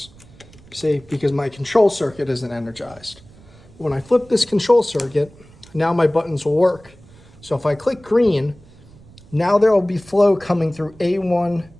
see, because my control circuit isn't energized. When I flip this control circuit, now my buttons will work. So if I click green, now there will be flow coming through A1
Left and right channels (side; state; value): right; noise; rumble, 24 dB below the sound